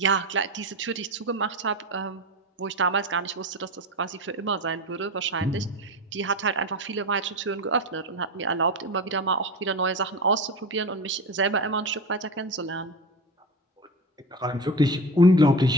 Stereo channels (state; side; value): normal; both; correlation 0.25